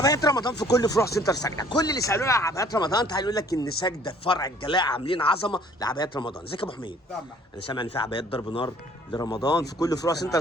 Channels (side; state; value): both; normal; correlation 0.56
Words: رمضان في كل فروع سنتر سجده، كل اللي سالونا على عبايات رمضان تعالوا يقول لك ان سجده فرع الجلاء عاملين عظمه لعبايات رمضان. ازيك يا ابو حميد؟ انا سامع ان في عبايات ضرب نار لرمضان في كل فروع سنتر